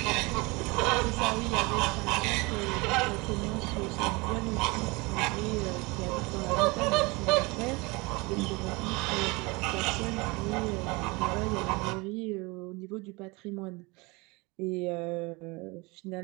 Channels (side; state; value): left; quieter; 25.5 dB